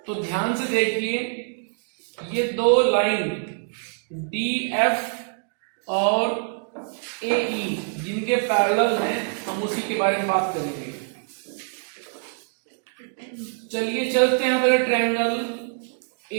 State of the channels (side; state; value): left; silent; 60 dB below the other